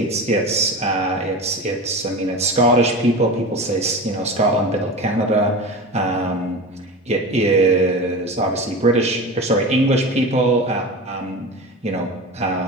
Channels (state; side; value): normal; both; correlation 0.29